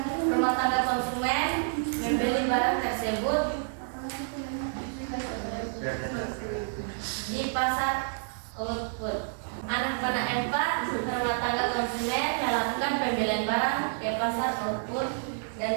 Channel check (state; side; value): silent; left; digital silence